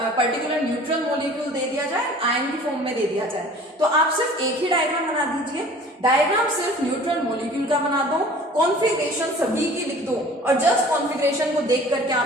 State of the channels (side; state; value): both; normal; correlation 0.47